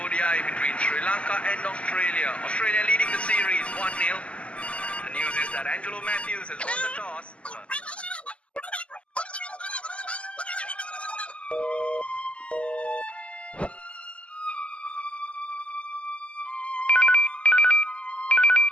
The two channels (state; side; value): late; right; 0.057 ms